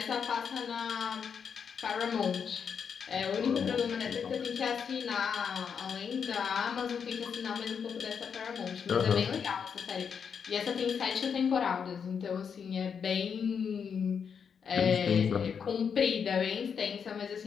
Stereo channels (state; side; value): quieter; right; 6.8 dB